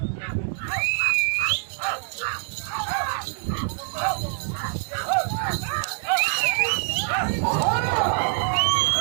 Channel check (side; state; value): left; silent; 60 dB below the other